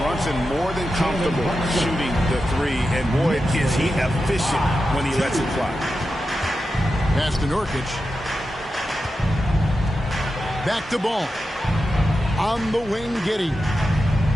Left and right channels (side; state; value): both; normal; correlation 0.90